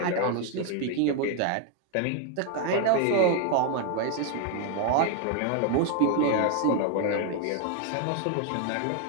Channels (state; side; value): different; both; correlation 0.01